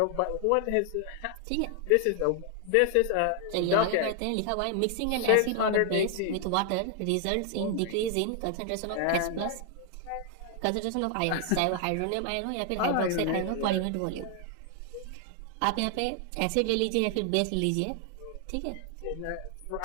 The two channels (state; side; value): different; both; correlation 0.00